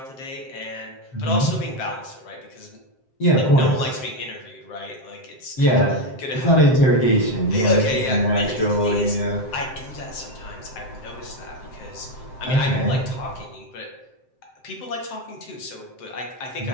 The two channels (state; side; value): late; right; 7.7 ms